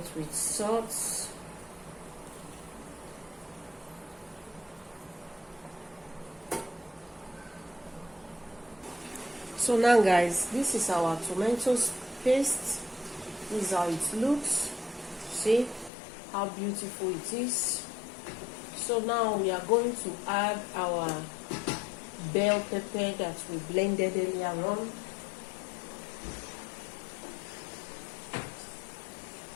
with salt. So now guys, this is our tomato paste. This is how it looks. See how beautiful it is. So now we are going to add our bell pepper that we blended earlier on.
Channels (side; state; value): right; drops out; at 15.9 s